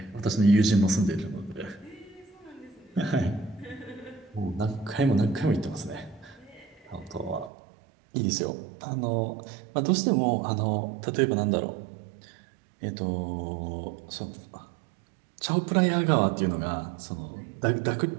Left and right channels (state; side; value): drops out; left; at 7.5 s